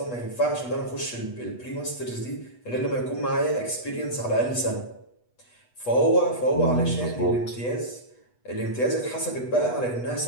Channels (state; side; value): late; right; 8.2 ms